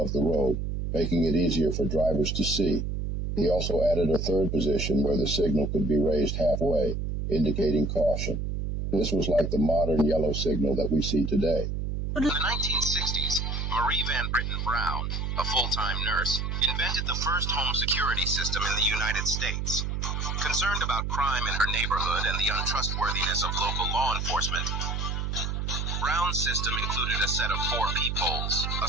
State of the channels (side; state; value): right; noise; hum, 2 dB below the sound